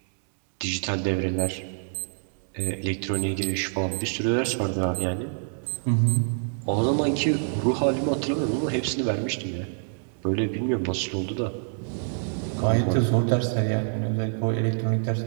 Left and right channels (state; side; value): silent; left; digital silence